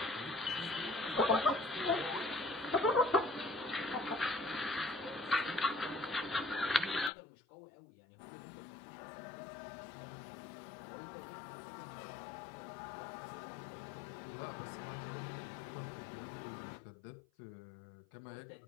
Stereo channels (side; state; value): right; drops out; at 7.1 s